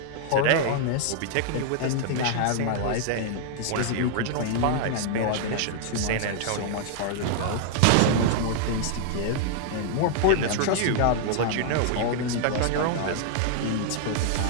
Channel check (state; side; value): different; both; correlation -0.01